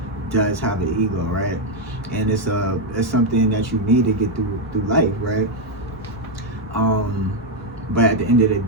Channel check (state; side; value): normal; both; correlation 0.02